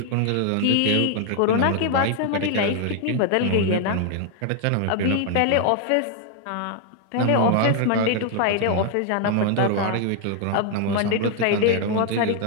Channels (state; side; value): different; both; correlation 0.00